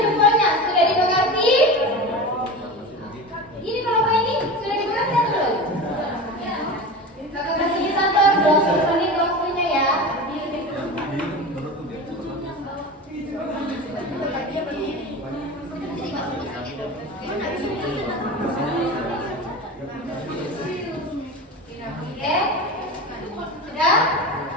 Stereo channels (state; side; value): normal; both; correlation 0.29